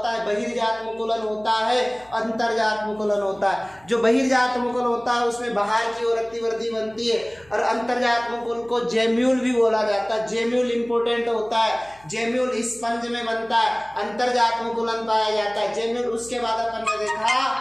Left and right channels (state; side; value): noise; left; hum, 28 dB below the sound